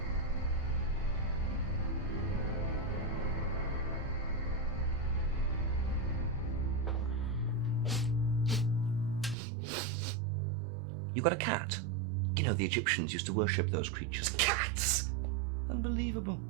You got a cat? You know, the Egyptians used to worship those creatures. Cats! Unbelievable.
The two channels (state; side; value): drops out; left; at 9.3 s